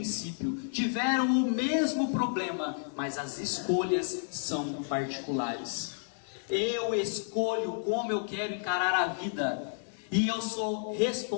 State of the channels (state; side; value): silent; right; 57 dB below the other